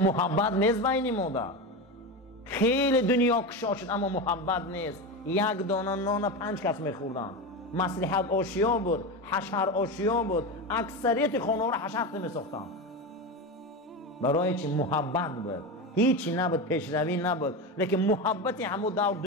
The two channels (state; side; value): normal; both; correlation 0.20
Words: نیست بین ما ده. خیلی دنیا کشا شد اما محبت نیست. یک دانه نان 5 کس میخوردن. مصلحت آشیا بود، حشر آشیا بود. اکثریت خانه ها را حشر میساختن. برای چی؟ محبت بود. هیچی نبود، پیشروی نبود، لیکن محبت همون دور